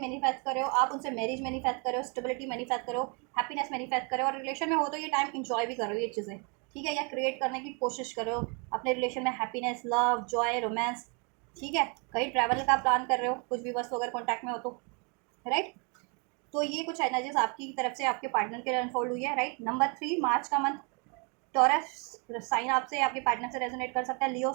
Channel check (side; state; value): left; quieter; 34.7 dB